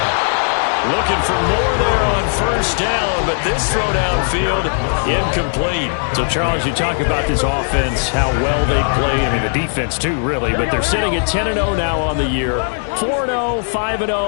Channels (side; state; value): right; silent; 66 dB below the other